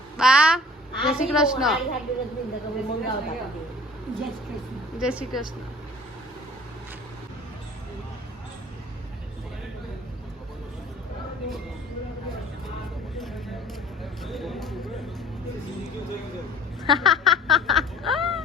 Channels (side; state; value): both; normal; correlation 0.50